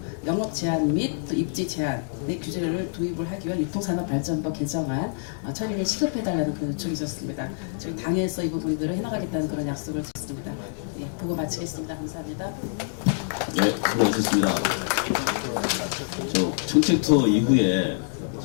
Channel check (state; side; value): silent; right; digital silence